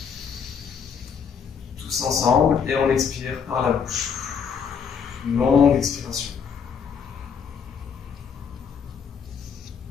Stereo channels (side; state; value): right; quieter; 6.7 dB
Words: Tous ensemble. Et on expire par la bouche. Une longue expiration.